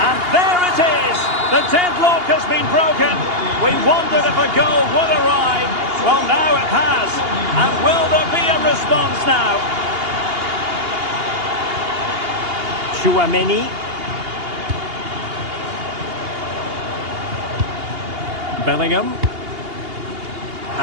And there it is. The deadlock has been broken. We wondered if a goal would arrive. Well, now it has. And will there be a response now? Tchouaméni. Bellingham.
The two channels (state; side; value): late; left; 2.8 ms